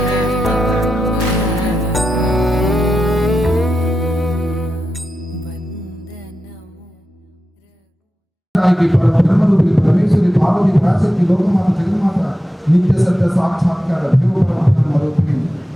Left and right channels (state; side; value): normal; both; correlation 0.90